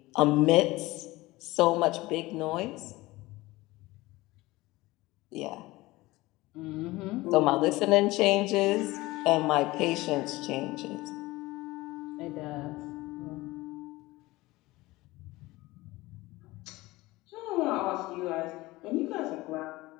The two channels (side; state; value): right; quieter; 19.9 dB